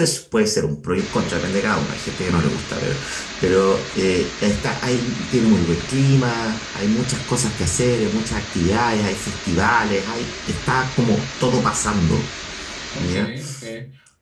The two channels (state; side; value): identical; both; correlation 1.00